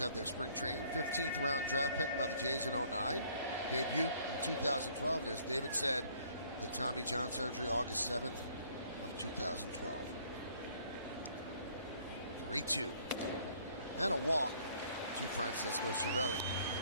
their spring training. 15th round draft pick by the Jays in 09. Debut in 2012. And as David said, the Tommy John surgery August 7th of 2012. 3-2. And a walk to Francisco Cervelli.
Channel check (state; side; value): inverted; both; correlation -0.60